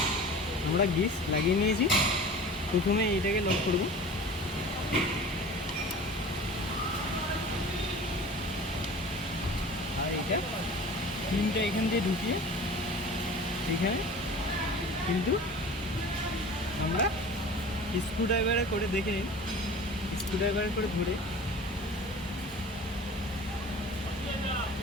আমরা গ্রিস লাগিয়ে নিয়েছি। প্রথমে এইটাকে লক করব। এটা পিনটা এখান দিয়ে ঢুকিয়ে এখানে কিন্তু আমরা স্ক্রুড্রাইভারে করে দেখে নিন, স্ক্রুড্রাইভারে করে ধরে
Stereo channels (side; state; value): both; normal; correlation 0.40